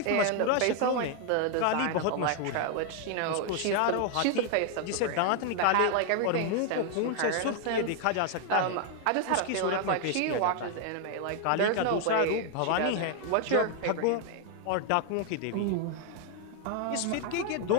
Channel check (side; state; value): both; different; correlation 0.01